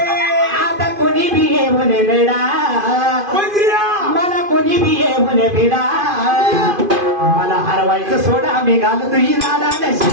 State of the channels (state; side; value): late; left; 2.5 ms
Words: आता कोणी बी ये म्हणे बेडा मला कोणी बी ये म्हणे बेडा मला हरवायचं सोडा मी घालतो ही राधा